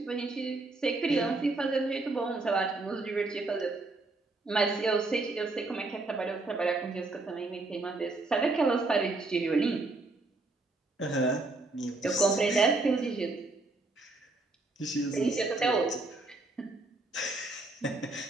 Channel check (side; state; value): left; quieter; 3.3 dB